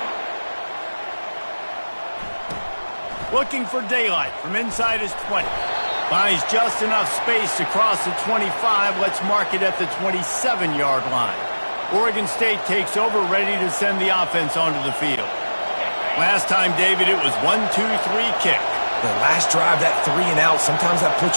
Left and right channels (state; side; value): inverted; both; correlation -1.00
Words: Looking for daylight from inside his 20. Finds just enough space to cross the 25. Let's mark it at the 27-yard line. Oregon State takes over, ready to send the offense onto the field. Last time, David, it was 1-2-3 kick. The last drive, that 3 and out, sometimes that puts